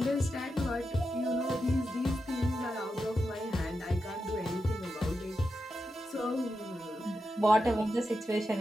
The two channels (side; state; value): both; normal; correlation 0.88